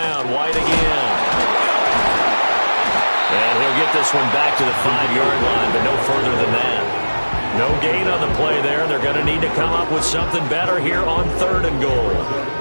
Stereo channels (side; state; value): both; inverted; correlation -1.00